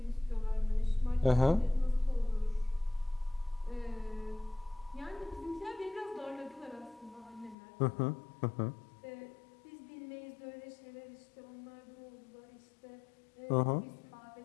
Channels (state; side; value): drops out; right; at 7.6 s